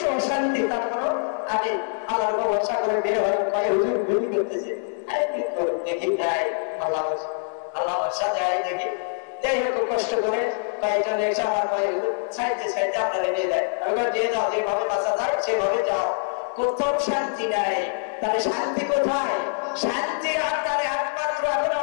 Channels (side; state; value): right; silent; 61 dB below the other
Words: অশান্তি, তারপর আমি আল্লাহর ভরসা করে বের হয়ে কয়ে হুজুর ভুলি করতেছে, দেখি যাই আল্লাহ ভরসা যায় দেখি, যাই হোক কষ্ট করে কয়েকজন এসে আমার কয়ে সাইডে সাইডে আপনারা নিয়ে দেয়, দিয়ে যাও, যেভাবে বাঁচা যায় সেভাবে যাও, কোথাও শান্তি নাই। তাহলে শান্তি কোথায়? শান্তি আপনার একমাত্র এখন